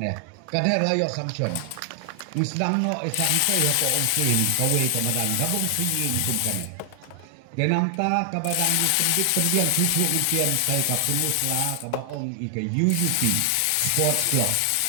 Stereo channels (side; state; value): both; different; correlation 0.00